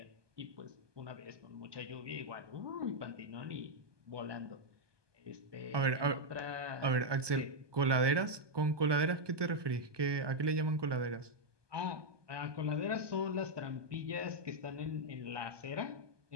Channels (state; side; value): late; left; 1.2 ms